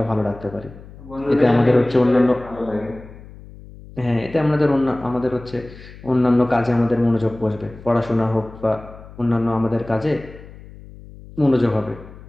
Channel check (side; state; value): left; noise; hum, 18 dB below the sound